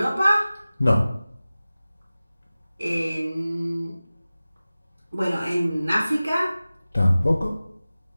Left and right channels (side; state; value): both; inverted; correlation -0.97